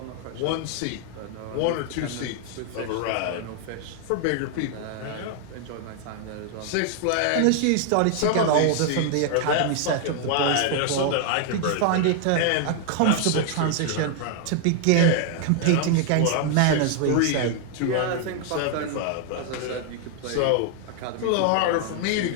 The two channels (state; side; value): different; both; correlation 0.00